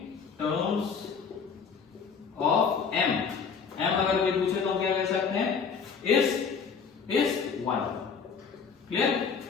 M अगर कोई पूछे तो हम क्या कह सकते हैं, इस 1। क्लियर।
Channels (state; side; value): quieter; right; 6.0 dB